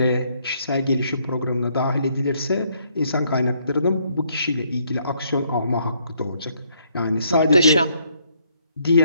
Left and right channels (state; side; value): inverted; both; correlation -0.70